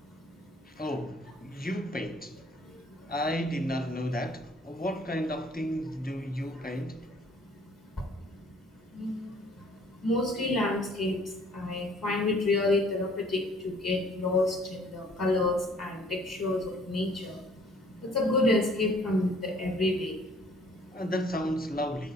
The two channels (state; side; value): normal; both; correlation 0.58